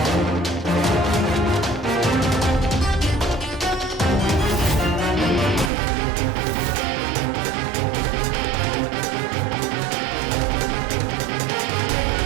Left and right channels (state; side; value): drops out; left; at 5.7 s